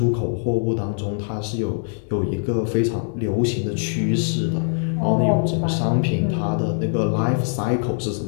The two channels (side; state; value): right; silent; 64 dB below the other